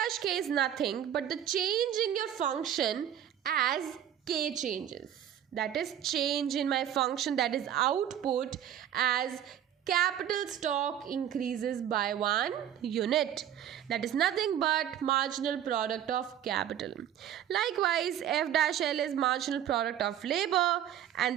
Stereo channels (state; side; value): quieter; left; 10.3 dB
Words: k is nothing but the change in your function as k changes. That is change in my function, that is output, as capital stock increases by 1 unit. That is nothing but marginal product of capital. Likewise, f dash l is marginal product of labor,